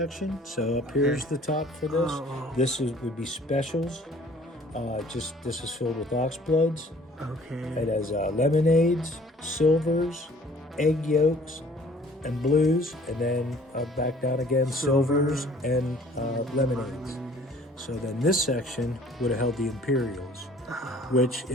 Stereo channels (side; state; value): both; normal; correlation 0.53